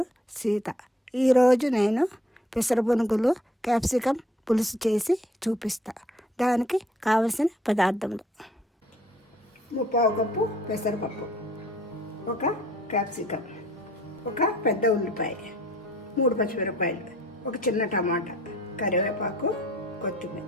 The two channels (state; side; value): normal; both; correlation 0.59